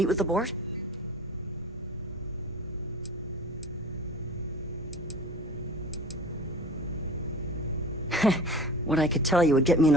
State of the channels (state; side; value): normal; both; correlation 0.38